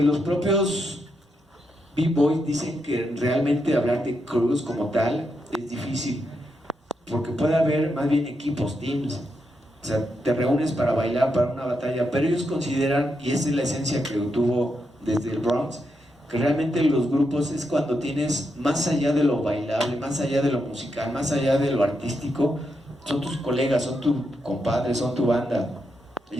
los propios B-Boys dicen que realmente hablar de crews como tal es difícil, porque puede haber más bien equipos, teams. O sea, te reúnes para bailar, para una batalla, pero ellos consideran, y esa es la esencia que tuvo desde el Bronx, que realmente los grupos es cuando tienes, más allá de lo bailable, más allá de lo musical, más allá de lo artístico, son tus colegas, son tus compadres, son tu banda.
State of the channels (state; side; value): normal; both; correlation 0.83